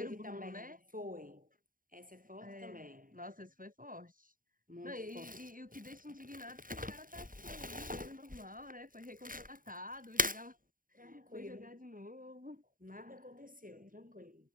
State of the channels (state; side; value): late; left; 0.40 ms